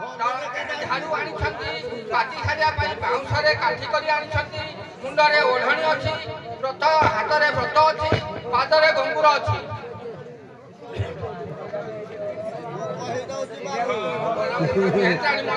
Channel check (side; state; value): both; identical; correlation 1.00